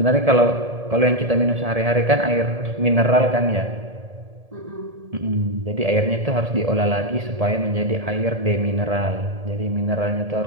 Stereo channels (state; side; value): late; left; 1.7 ms